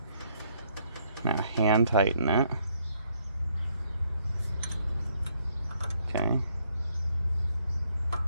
Now hand tighten it. Okay. A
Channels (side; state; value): both; inverted; correlation -0.70